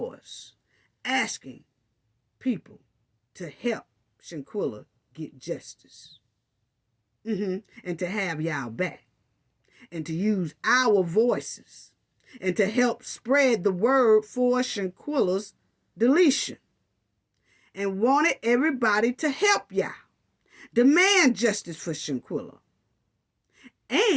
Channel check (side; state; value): both; identical; correlation 1.00